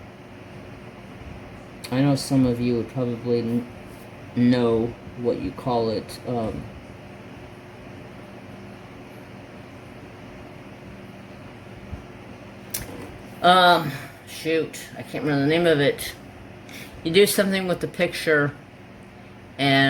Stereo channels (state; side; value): identical; both; correlation 1.00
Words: I know some of you would probably know what you call it. Shoot, I can't remember the name of it. You do something with the picture,